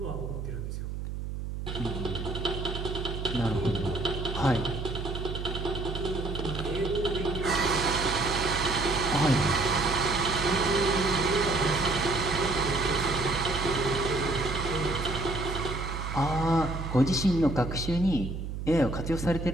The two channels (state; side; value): noise; right; hum, 6 dB below the sound